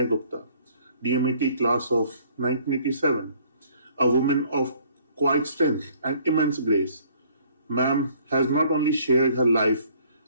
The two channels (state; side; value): inverted; both; correlation -0.60